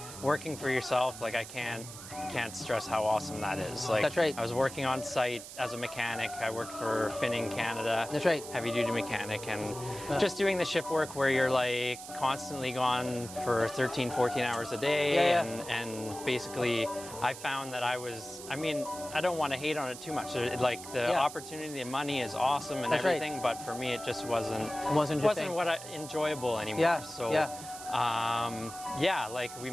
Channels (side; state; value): right; noise; hiss, 13 dB below the sound